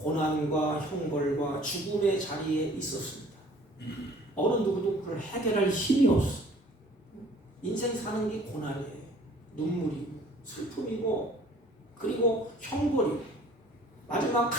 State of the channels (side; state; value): both; normal; correlation 0.53